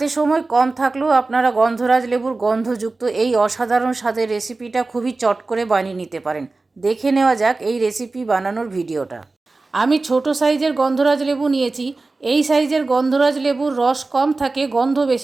সময় কম থাকলেও আপনারা গন্ধরাজ লেবুর গন্ধযুক্ত এই অসাধারণ স্বাদের রেসিপিটা খুবই চট করে বানিয়ে নিতে পারেন। দেখে নেওয়া যাক এই রেসিপি বানানোর ভিডিওটা। আমি ছোট সাইজের গন্ধরাজ লেবু নিয়েছি। এই সাইজের গন্ধরাজ লেবুর রস কম থাকে, গন্ধ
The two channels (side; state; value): left; quieter; 3.5 dB